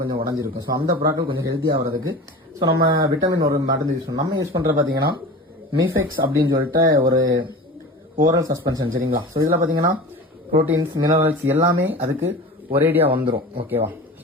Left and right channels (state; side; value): normal; both; correlation 0.34